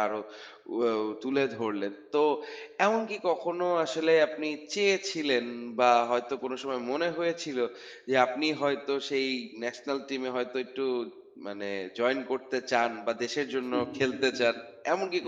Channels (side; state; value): both; identical; correlation 1.00